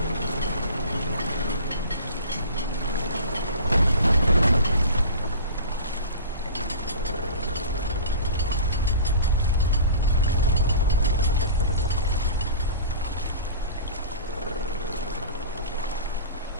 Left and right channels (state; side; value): inverted; both; correlation -0.38